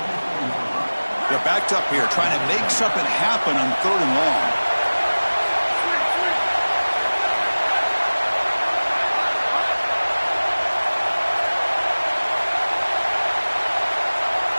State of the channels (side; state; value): both; inverted; correlation -1.00